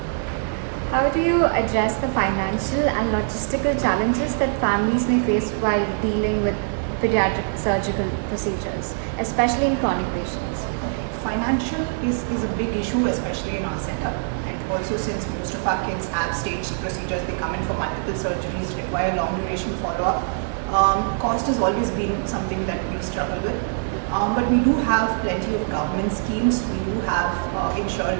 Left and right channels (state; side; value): silent; left; 57 dB below the other